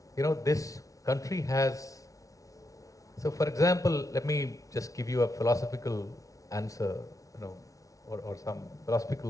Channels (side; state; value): right; late; 0.17 ms